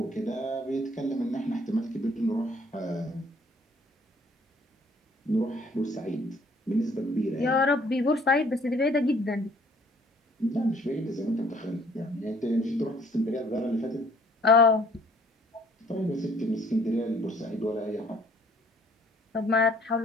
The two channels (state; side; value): normal; both; correlation 0.59